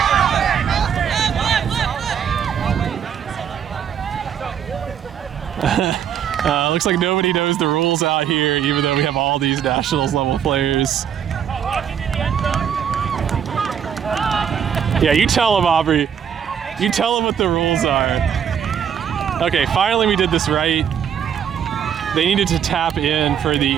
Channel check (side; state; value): left; quieter; 8.5 dB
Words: Looks like nobody knows the rules out here, even though we have all these nationals level players. Yeah, you tell them, Aubrey. You tell them what the rules are. Okay, finally we did this right. They needed to tap in for the